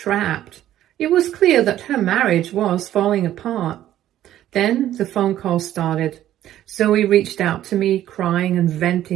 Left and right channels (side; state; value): left; quieter; 12.5 dB